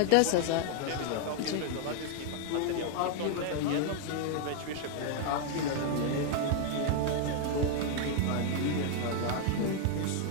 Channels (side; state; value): both; different; correlation 0.00